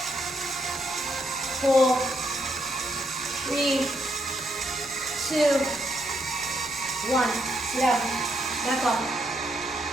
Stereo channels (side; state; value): right; noise; hum, 27 dB below the sound